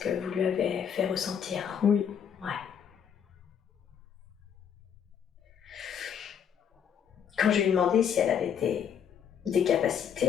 que vous lui avez fait ressentir. Oui. Ouais. Quand je lui ai demandé si elle avait des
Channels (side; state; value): right; quieter; 8.1 dB